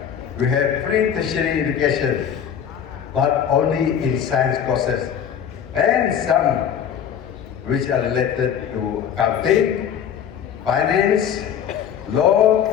we have free tertiary education, but only in science courses and some which are related to accounting, finance, law,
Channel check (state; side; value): quieter; right; 8.7 dB